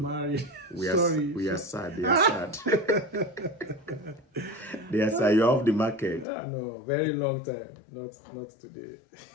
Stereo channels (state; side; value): drops out; right; at 6.2 s